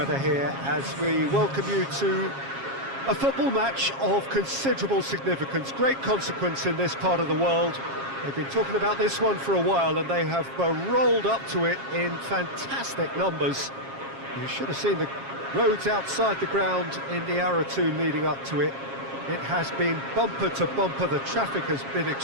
here as we welcome you to a football match of considerable significance, great consequence in this part of the world. They've been talking about this one for a while and they have rolled up to it in fantastic numbers. You should have seen the roads outside the ground in the hour or two leading up to it. It has been bumper to bumper, the traffic has been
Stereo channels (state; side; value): late; left; 7.4 ms